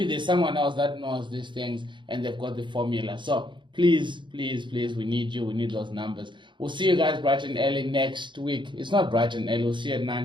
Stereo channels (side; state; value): left; late; 0.23 ms